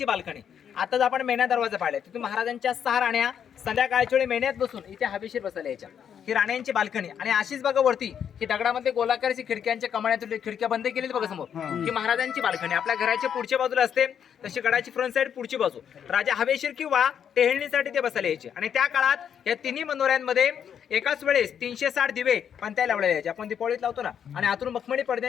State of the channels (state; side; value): quieter; right; 8.4 dB